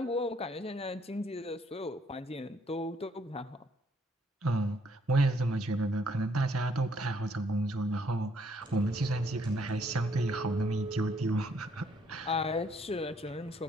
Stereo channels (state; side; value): normal; both; correlation 0.67